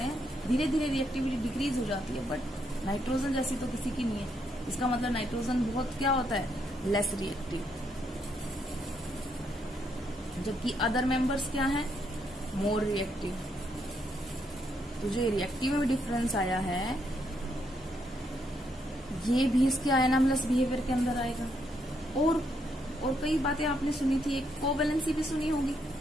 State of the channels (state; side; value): normal; both; correlation 0.76